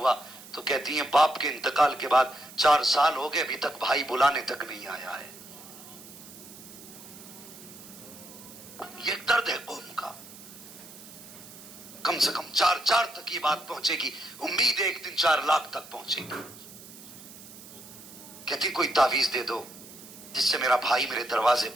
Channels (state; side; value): noise; right; hiss, 17 dB below the sound